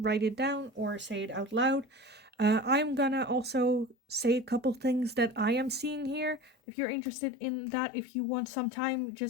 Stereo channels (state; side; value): drops out; right; at 6.6 s